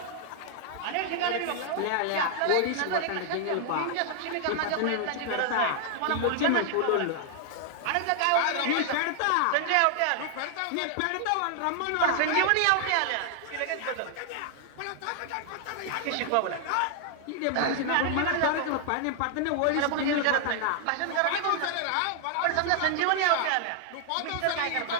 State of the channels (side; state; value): both; different; correlation 0.00